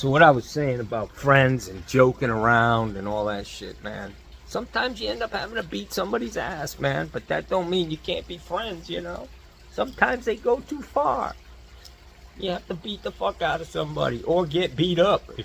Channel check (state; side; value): identical; both; correlation 1.00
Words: what I was saying about friends and joking around and all that shit, man. Sometimes you end up having to beat somebody's ass, man. But that don't mean you can't be friends, you know. Sometimes they go too far. You have to beat the fuck out of somebody or get beat up